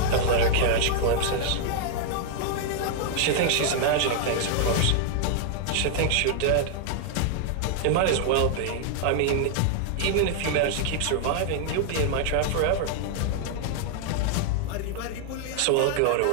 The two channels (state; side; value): different; both; correlation -0.01